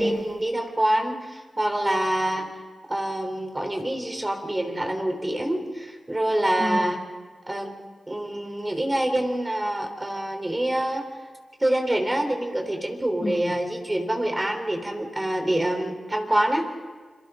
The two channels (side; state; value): both; normal; correlation 0.98